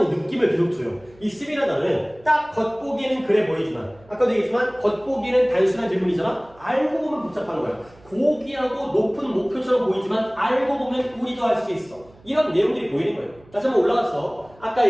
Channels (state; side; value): noise; right; hum, 27 dB below the sound